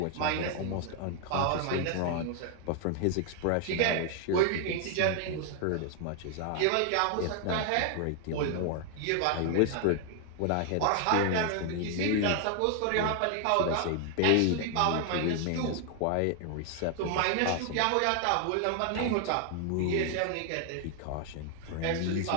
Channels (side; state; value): both; different; correlation 0.00